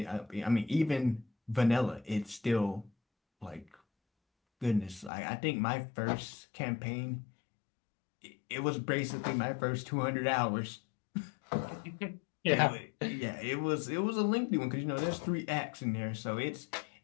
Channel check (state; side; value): drops out; right; at 5.1 s